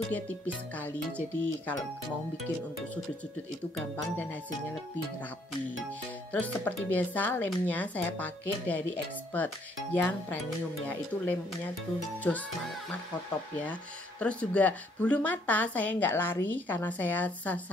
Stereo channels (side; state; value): both; normal; correlation 0.67